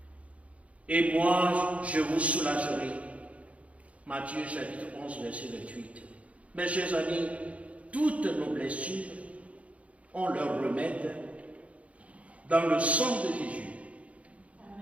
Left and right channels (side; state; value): left; late; 0.065 ms